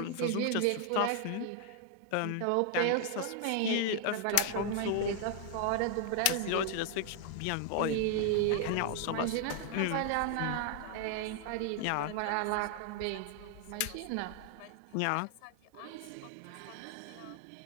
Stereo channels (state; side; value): different; both; correlation 0.00